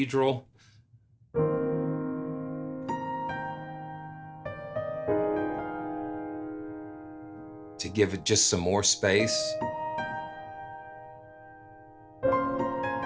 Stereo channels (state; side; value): identical; both; correlation 1.00